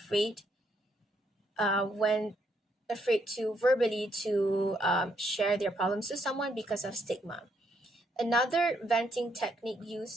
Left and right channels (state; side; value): normal; both; correlation 0.74